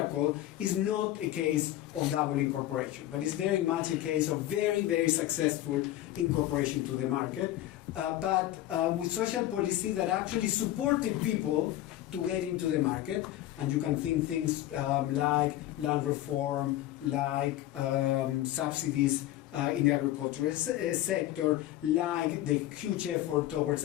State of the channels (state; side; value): quieter; right; 14.2 dB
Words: is not a case of double incorporation, but it's very much a case of very, very successful incorporation to the market, but with social policy that actually supported people to get into the market. And you can think things like land reform, like subsidies in the agricultural sector, like the huge effort towards